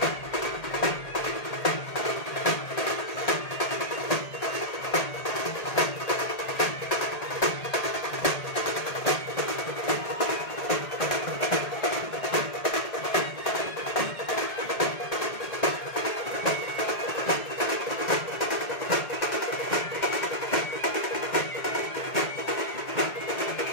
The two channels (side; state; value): right; late; 1.8 ms